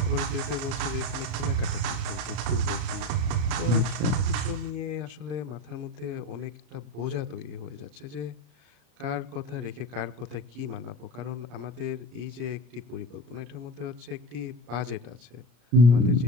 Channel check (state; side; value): late; left; 33 ms